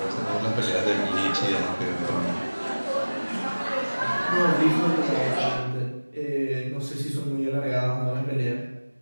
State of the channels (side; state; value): both; inverted; correlation -1.00